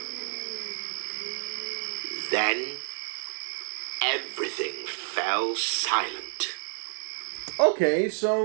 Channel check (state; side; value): silent; left; 58 dB below the other